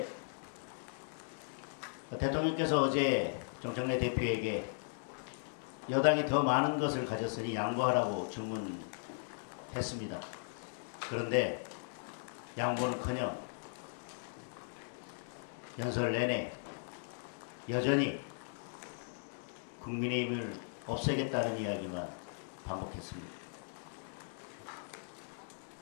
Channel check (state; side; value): silent; right; digital silence